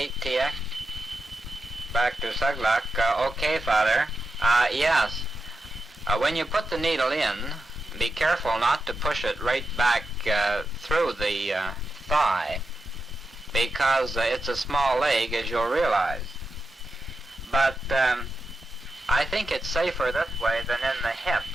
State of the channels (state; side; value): normal; both; correlation 0.87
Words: Back to Suglak. Okay, Father. Yes. When you put the needle in, be careful not to push it right back through the thigh because it's a small leg, as you'll realize. But I think it's safer this way than in the hip,